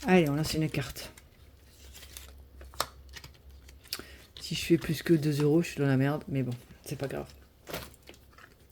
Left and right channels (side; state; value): both; identical; correlation 1.00